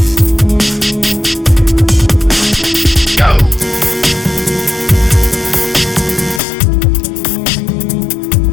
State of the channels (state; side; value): drops out; right; at 6.4 s